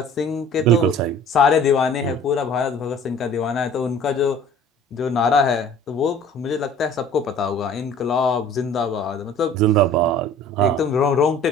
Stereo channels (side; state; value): both; normal; correlation 0.48